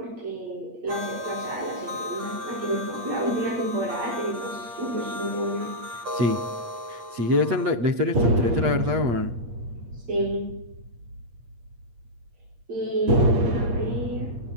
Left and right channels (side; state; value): left; late; 8.5 ms